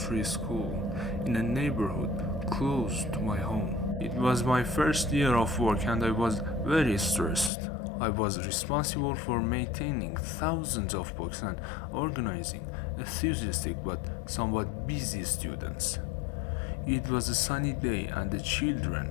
school in a neighborhood close to my home. It was my first year of work and I was very stressed. I was responsible for maintaining thousands of books and organizing enthusiastic but somewhat busy students. It was a sunny day and the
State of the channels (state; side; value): drops out; right; at 7.5 s